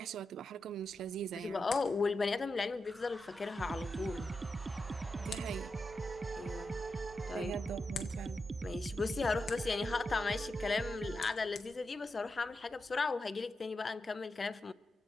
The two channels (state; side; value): normal; both; correlation 0.88